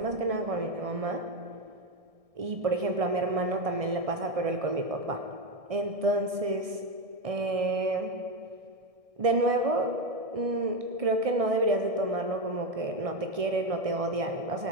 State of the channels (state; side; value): late; left; 1.6 ms